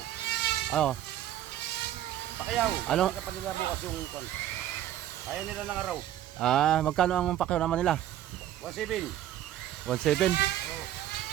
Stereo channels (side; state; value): left; quieter; 12.2 dB